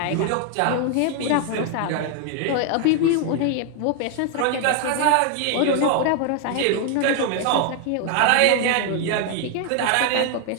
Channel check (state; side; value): different; both; correlation 0.00